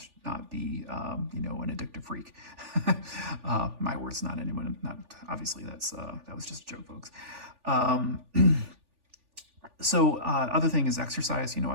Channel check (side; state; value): left; late; 3.4 ms